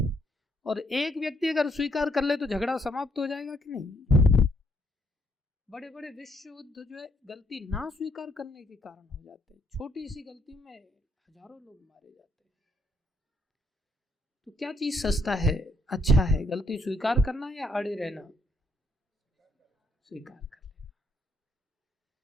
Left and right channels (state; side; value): normal; both; correlation 0.72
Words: और एक व्यक्ति अगर स्वीकार कर ले तो झगड़ा समाप्त हो जाएगा कि नहीं। बड़े बड़े विश्व युद्ध जो है गलती ना स्वीकार करने के कारण हो जाते हैं। छोटी सी गलती में हजारों लोग मारे जाते हैं। तो क्या चीज सस्ता है, अच्छा है? गलती स्वीकार करना या अड़े रहना? स्वीकार कर लेना।